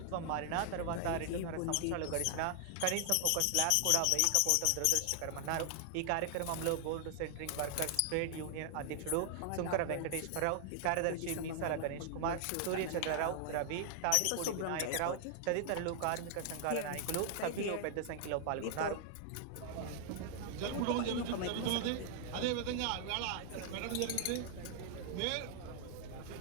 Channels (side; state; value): both; different; correlation 0.00